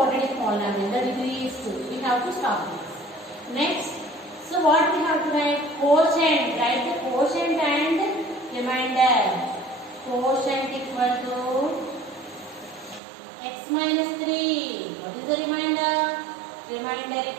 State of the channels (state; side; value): drops out; left; at 13.0 s